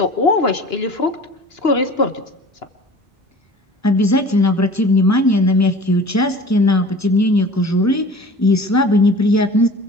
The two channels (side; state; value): both; normal; correlation 0.43